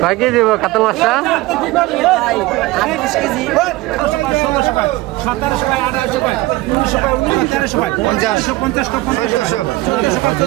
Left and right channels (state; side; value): quieter; left; 19.3 dB